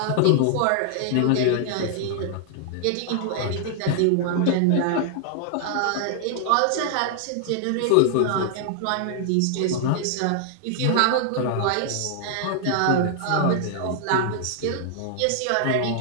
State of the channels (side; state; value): both; different; correlation -0.01